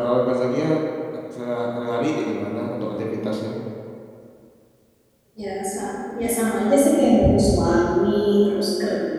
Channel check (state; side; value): identical; both; correlation 1.00